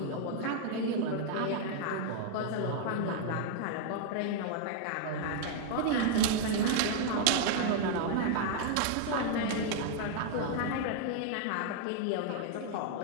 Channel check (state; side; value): different; both; correlation 0.00